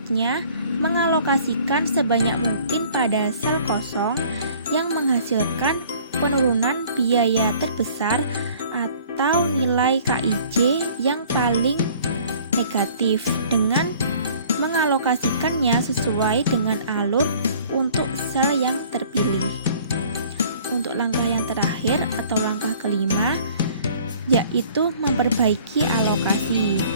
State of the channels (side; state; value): both; inverted; correlation -0.52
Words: mengalokasikan sebanyak mungkin pada sel kosong yang menghasilkan penurunan biaya terbesar atau nilai KIJ yang paling negatif dengan mengalokasikannya sesuai dengan alur untuk sel yang terpilih. Untuk langkah yang terakhir atau langkah kelima yaitu memperbaiki alokasi,